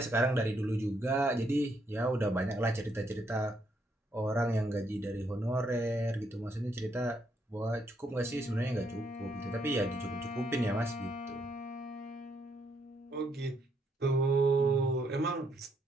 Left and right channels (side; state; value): both; normal; correlation 0.74